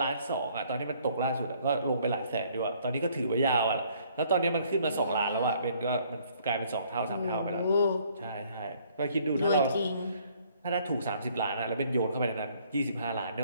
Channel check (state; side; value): inverted; both; correlation -0.62